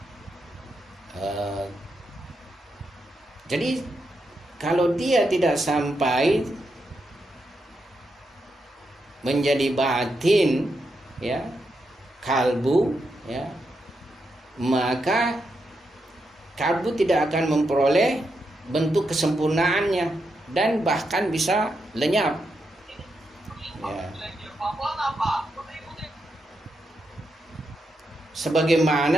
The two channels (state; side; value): normal; both; correlation 0.84